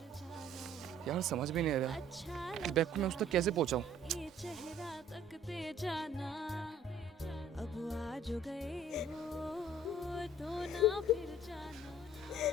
यार समझ भी नहीं आ रहा इस बैग को मैं उस तक कैसे पहुंचाऊं। जाना अब आज गए हो तो ना फिर जाना।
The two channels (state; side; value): normal; both; correlation 0.55